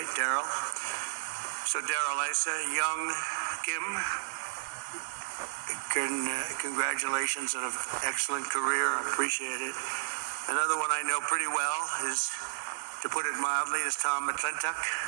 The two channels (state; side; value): silent; left; 56 dB below the other